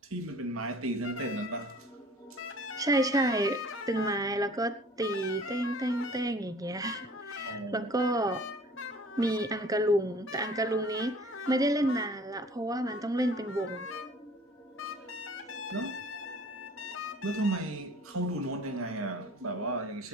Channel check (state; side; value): normal; both; correlation 0.50